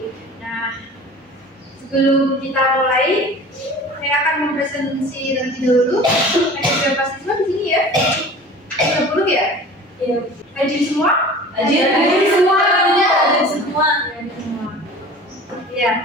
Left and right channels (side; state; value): both; normal; correlation 0.41